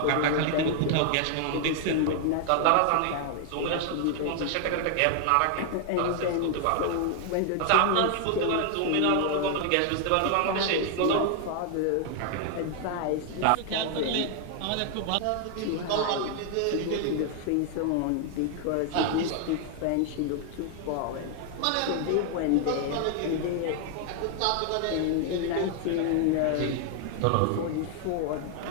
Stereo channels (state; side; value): different; both; correlation 0.00